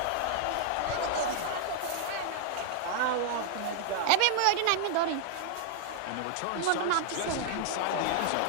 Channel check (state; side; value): different; both; correlation -0.01